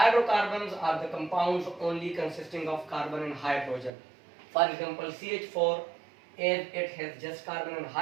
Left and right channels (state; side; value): drops out; left; at 3.9 s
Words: are the compounds only consisting of carbon and hydrogen. For example, CH4, as it has just carbon and